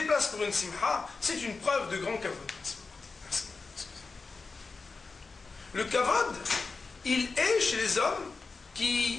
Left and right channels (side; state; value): right; quieter; 4.3 dB